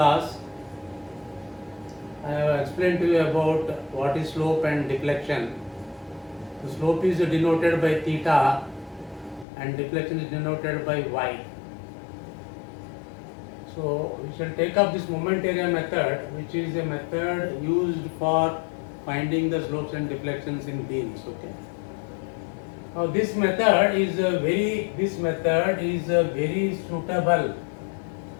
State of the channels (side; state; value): right; drops out; at 9.5 s